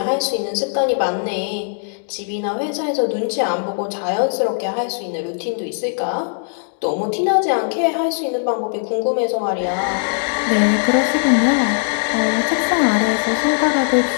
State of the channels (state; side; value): silent; right; digital silence